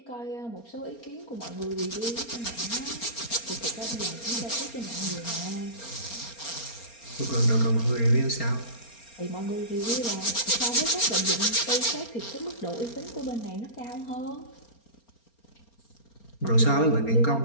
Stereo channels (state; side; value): late; right; 4.3 ms